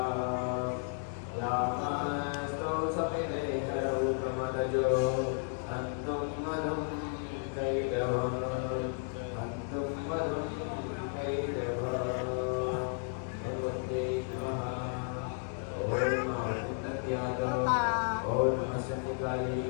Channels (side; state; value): right; silent; 56 dB below the other